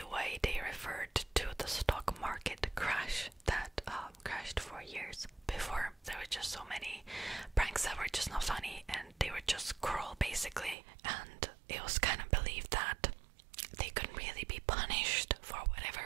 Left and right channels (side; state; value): left; drops out; at 10.8 s